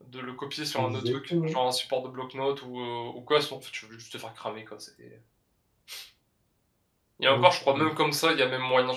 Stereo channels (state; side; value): identical; both; correlation 1.00